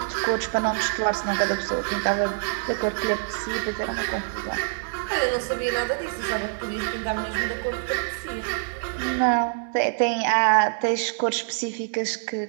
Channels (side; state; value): left; silent; 61 dB below the other